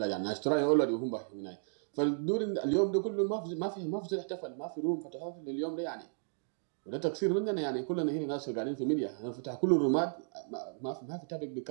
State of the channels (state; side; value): silent; left; digital silence